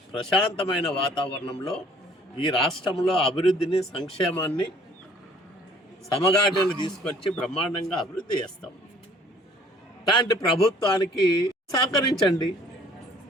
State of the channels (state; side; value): normal; both; correlation 0.56